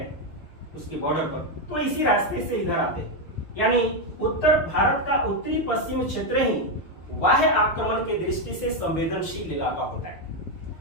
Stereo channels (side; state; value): right; late; 6.1 ms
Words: उसके बॉर्डर पर, तो इसी रास्ते से इधर आते हैं। यानी उत्तर भारत का उत्तरी पश्चिम क्षेत्र ही बाह्य आक्रमण के दृष्टि से संवेदनशील इलाका होता है।